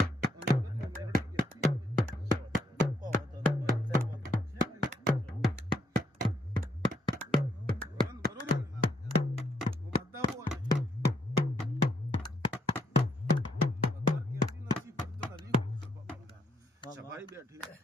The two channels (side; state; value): both; normal; correlation 0.73